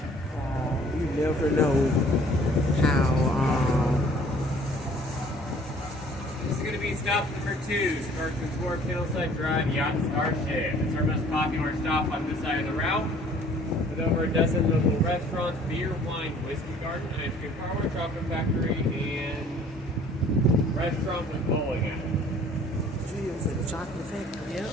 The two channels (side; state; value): both; normal; correlation 0.54